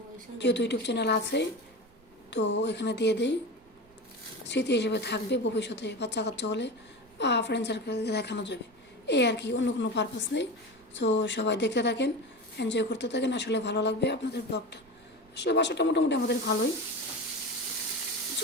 যেহেতু ইউটিউব চ্যানেল আছে তো এখানে দিয়ে দিই, স্মৃতি হিসেবে থাকবে, ভবিষ্যতে বাচ্চা কাচ্চা হলে বা ফ্রেন্ড সার্কেলকে দেখানো যাবে, এই আর কি, অন্য কোনো পারপাস নেই। তো সবাই দেখতে থাকেন, এনজয় করতে থাকেন, আসলে ভালো লাগবে আপনাদের ব্লগটা। আসলে বাসাটা মোটামুটি আমাদের ভালোই,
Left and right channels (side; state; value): right; noise; rumble, 29 dB below the sound